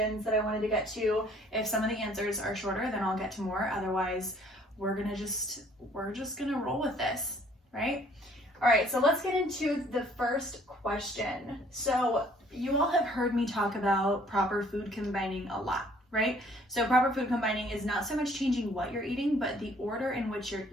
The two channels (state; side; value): normal; both; correlation 0.59